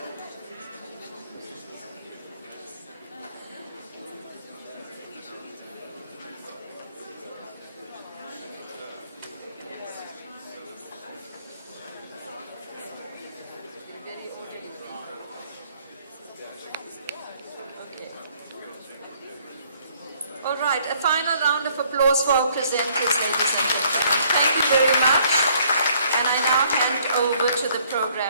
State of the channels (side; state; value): both; inverted; correlation -0.64